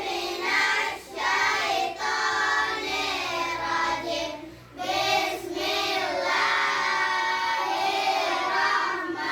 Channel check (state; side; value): identical; both; correlation 1.00